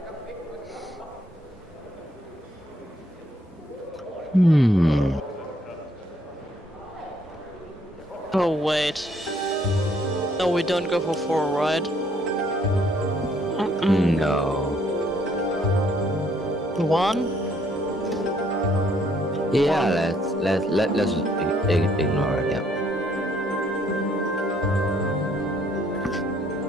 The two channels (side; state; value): both; normal; correlation 0.67